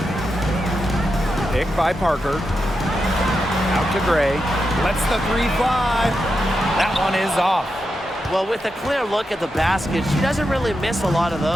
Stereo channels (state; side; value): normal; both; correlation 0.87